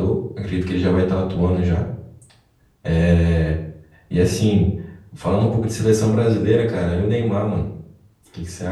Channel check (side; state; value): both; identical; correlation 1.00